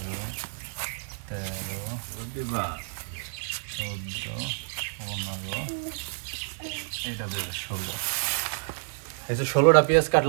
14, 15, এইটা 16। এই যে 16টা পেঁয়াজ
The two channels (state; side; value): silent; left; digital silence